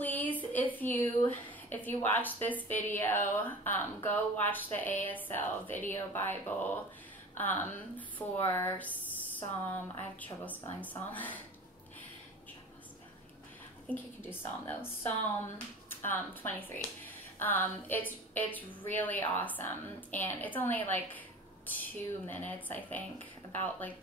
if you watch this video, go watch the ASL video Bible for Psalm. I have trouble spelling Psalm. I think you can do Psalm though. Psalm 23. It's really awesome, and it's only like 2 minutes, I think, about like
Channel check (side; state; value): both; normal; correlation 0.37